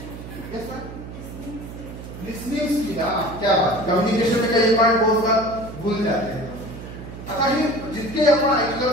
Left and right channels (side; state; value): right; noise; hum, 12 dB below the sound